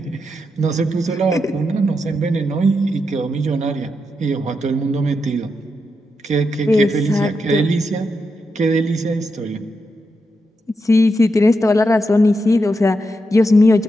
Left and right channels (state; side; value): normal; both; correlation 0.85